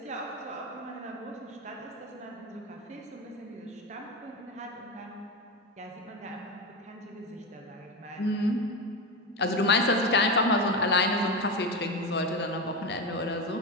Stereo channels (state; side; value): normal; both; correlation 0.18